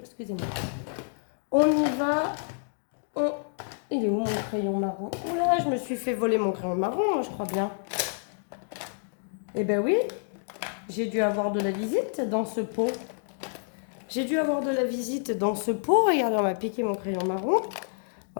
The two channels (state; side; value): silent; right; digital silence